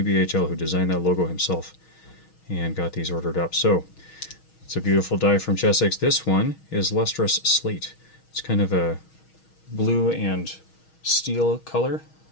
who designed that logo himself and got these ordered up. So it's a beautiful die from Chessex. This one is Lustrous Slate. It's kind of a blue and steel color.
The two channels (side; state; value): right; late; 6.3 ms